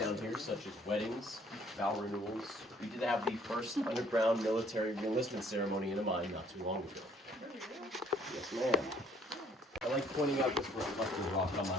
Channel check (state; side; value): normal; both; correlation 0.61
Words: here such as weddings, vow renewals. We did have the first underground military reenlistment ceremony in a mine not too long ago. Yes, ma'am. I like pointing out this reflecting rock on